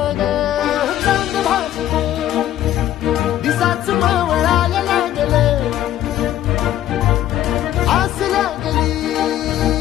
ग चांद भासलं दिसाच मावळायला लागलं आस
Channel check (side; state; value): right; quieter; 12.5 dB